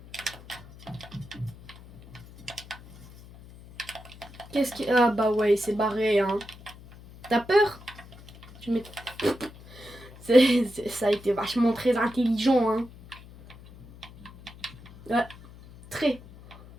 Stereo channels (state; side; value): noise; left; hum, 19 dB below the sound